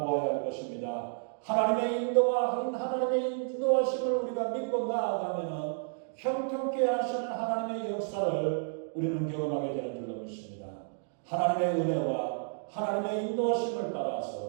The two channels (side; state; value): left; silent; digital silence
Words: 할 것입니다. 하나님의 인도하심을 우리가 믿고 나아가면 형통케 하시는 하나님의 역사를 우리는 경험하게 되는 줄로 믿습니다. 하나님의 은혜와 하나님의 인도하심을